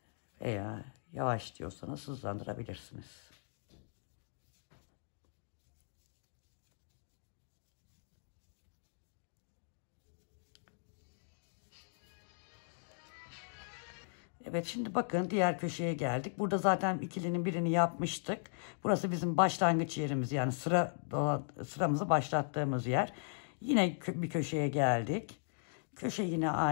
Veya yavaş diyorsanız hızlandırabilirsiniz. Evet, şimdi bakın diğer köşeye geldik. Burada zaten ikilinin birini yapmıştık. Burası bizim başlangıç yerimiz. Yani sıramızı başlattığımız yer. Yine bir köşeye geldik. Köşe yine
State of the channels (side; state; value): right; silent; digital silence